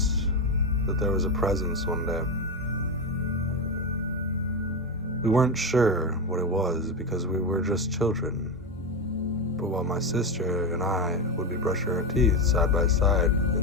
that there was a presence one day. We weren't sure what it was because we were just children. But while my sister and I would be brushing our teeth side by side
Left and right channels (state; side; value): normal; both; correlation 0.13